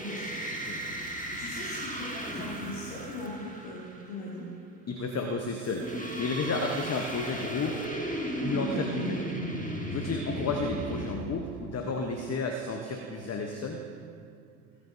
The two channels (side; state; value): both; normal; correlation 0.19